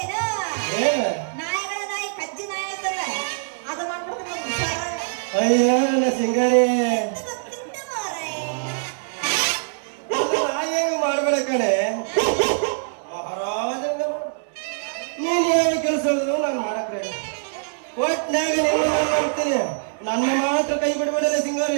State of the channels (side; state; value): left; silent; 63 dB below the other